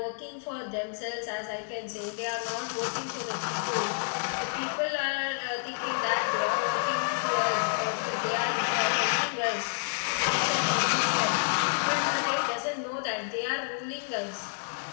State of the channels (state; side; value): silent; right; digital silence